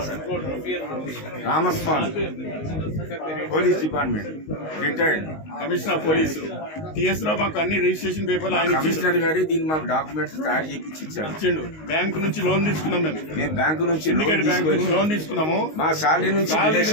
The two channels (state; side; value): late; right; 19 ms